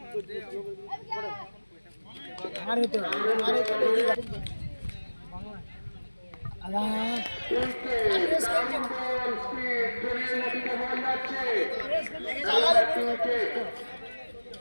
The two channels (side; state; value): both; inverted; correlation -1.00